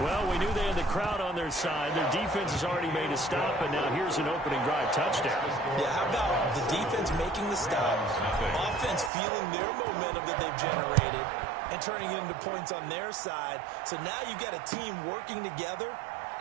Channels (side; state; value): left; drops out; at 9.1 s